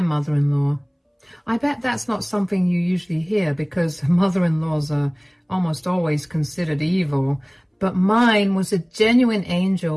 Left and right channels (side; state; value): both; identical; correlation 1.00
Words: mother-in-law. I bet that's not something you usually hear because mother-in-laws are almost always considered evil, but mine was a genuine